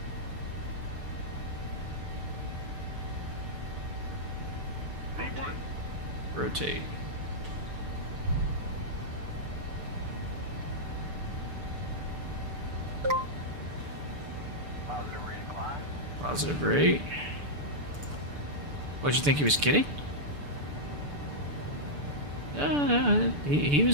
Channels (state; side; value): late; left; 6.9 ms